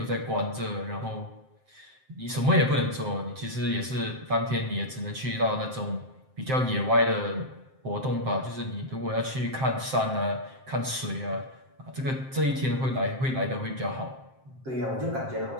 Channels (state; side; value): late; left; 7.6 ms